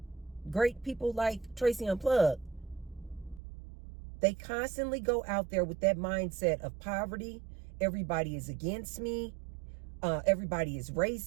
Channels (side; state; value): left; drops out; at 3.4 s